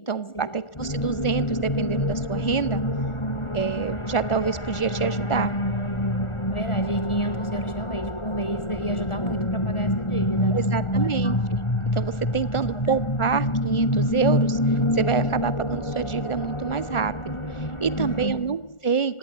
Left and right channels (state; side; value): late; right; 1.4 ms